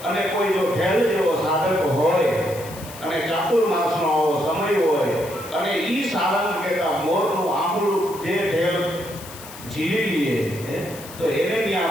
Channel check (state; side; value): noise; left; hiss, 16 dB below the sound